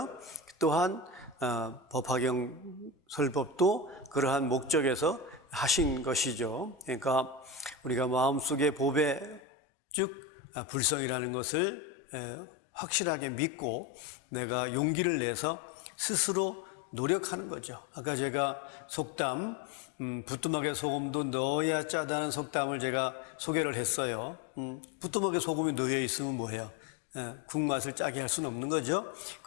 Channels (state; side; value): drops out; right; at 9.4 s